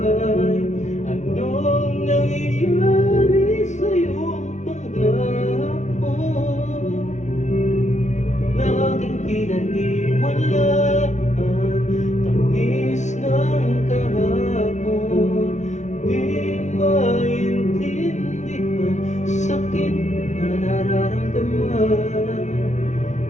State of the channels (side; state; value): right; late; 0.34 ms